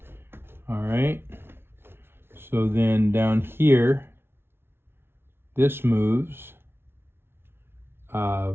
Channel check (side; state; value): left; late; 0.11 ms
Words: All right, so then down here, this moves